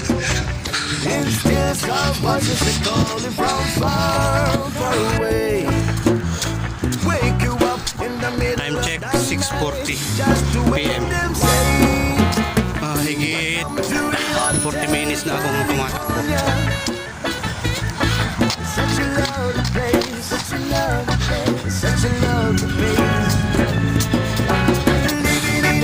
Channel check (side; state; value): both; identical; correlation 1.00